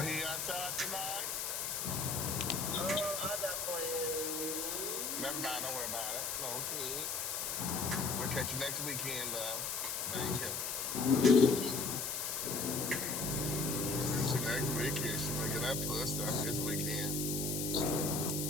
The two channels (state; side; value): noise; left; hiss, 1 dB below the sound